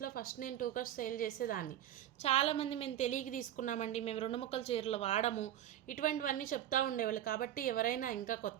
ఫస్ట్ నేను 2 కట్స్ సేల్ చేసేదాన్ని. చాలామంది మేము తెలియక తీసుకున్నామండి, మేము 2 ముక్కల చీరలు వాడము, ఇటువంటివన్నీ చెప్తూ ఉండేవాళ్ళు. కాబట్టి ఎవరైనా ఇంకా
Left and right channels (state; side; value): quieter; left; 11.6 dB